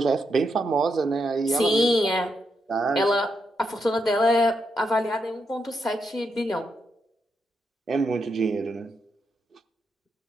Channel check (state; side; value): normal; both; correlation 0.82